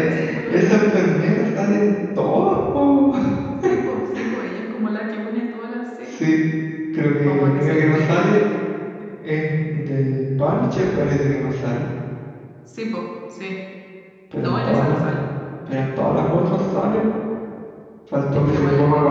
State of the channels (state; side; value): identical; both; correlation 1.00